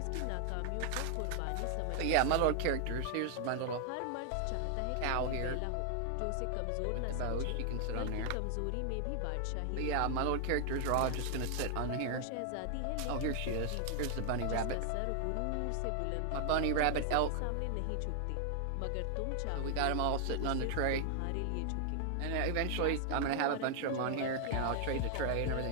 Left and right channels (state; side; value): different; both; correlation 0.00